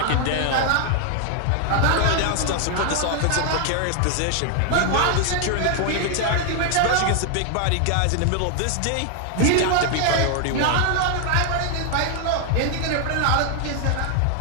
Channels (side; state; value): both; different; correlation 0.00